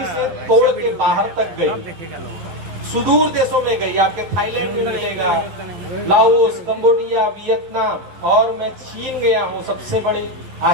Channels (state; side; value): late; left; 11 ms